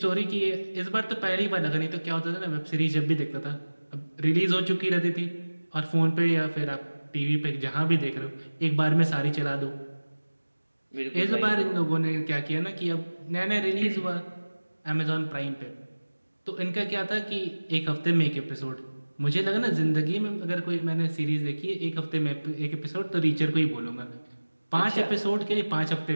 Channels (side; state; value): both; inverted; correlation -1.00